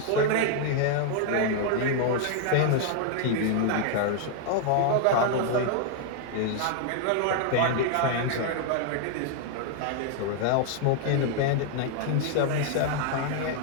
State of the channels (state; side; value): different; both; correlation 0.00